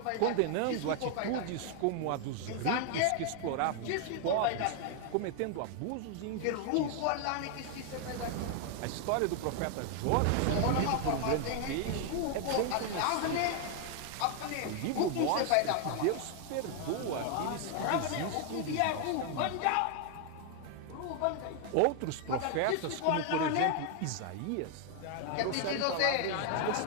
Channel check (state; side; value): different; both; correlation 0.00